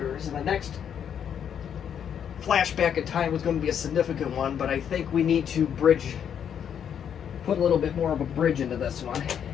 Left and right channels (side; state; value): right; quieter; 8.5 dB